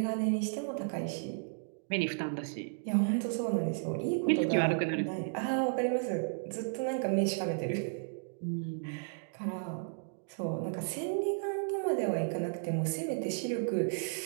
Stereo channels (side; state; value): left; silent; digital silence